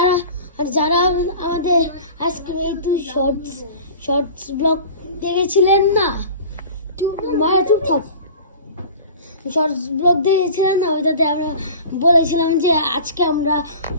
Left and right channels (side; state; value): both; inverted; correlation -0.40